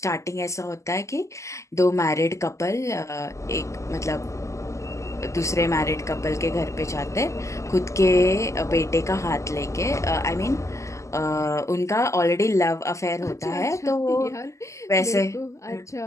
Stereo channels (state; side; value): late; right; 0.15 ms